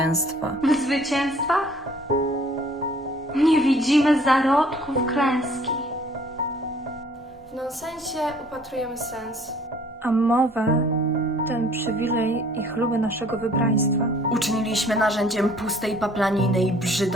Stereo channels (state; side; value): normal; both; correlation 0.56